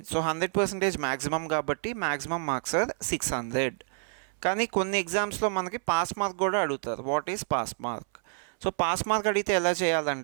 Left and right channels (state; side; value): silent; left; 59 dB below the other